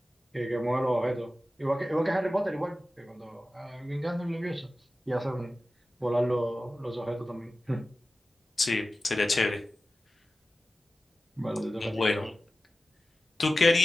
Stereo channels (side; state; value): both; normal; correlation 0.95